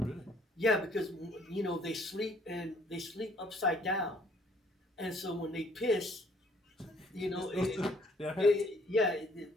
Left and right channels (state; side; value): normal; both; correlation 0.61